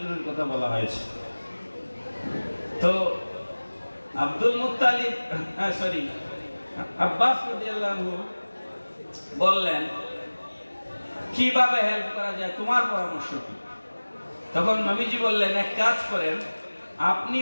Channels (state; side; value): inverted; both; correlation -1.00